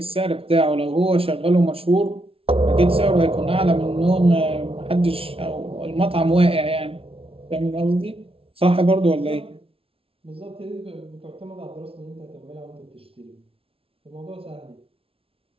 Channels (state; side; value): late; left; 0.27 ms